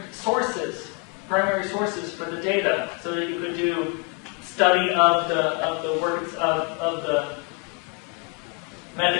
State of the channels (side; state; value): right; quieter; 32.4 dB